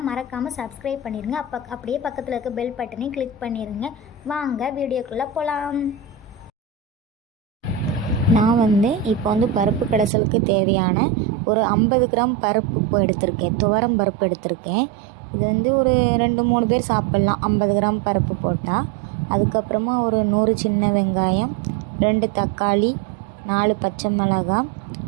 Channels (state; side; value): drops out; left; at 10.1 s